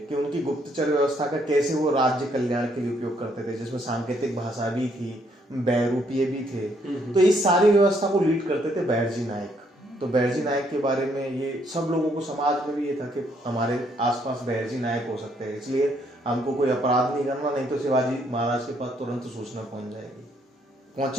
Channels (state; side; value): normal; both; correlation 0.70